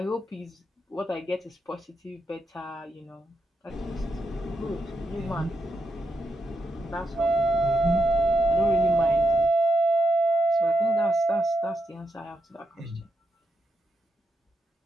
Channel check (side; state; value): both; normal; correlation 0.84